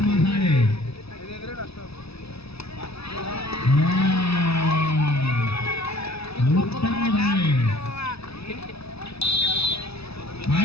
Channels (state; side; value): late; right; 0.78 ms